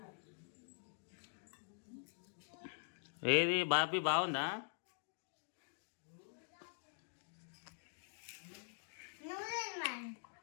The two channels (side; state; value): right; silent; digital silence